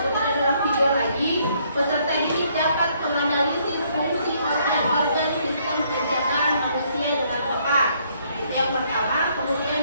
adalah video lagi, peserta didik dapat menganalisis fungsi organ-organ sistem pencernaan manusia dengan tepat. Itu yang pertama. Kemudian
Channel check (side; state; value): both; inverted; correlation -0.68